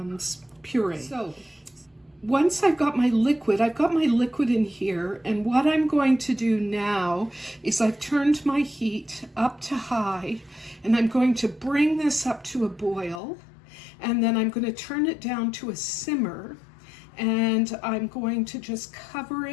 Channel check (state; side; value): drops out; right; at 13.2 s